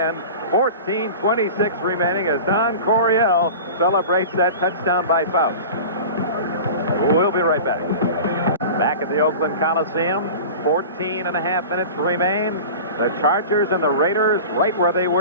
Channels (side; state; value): both; inverted; correlation -0.35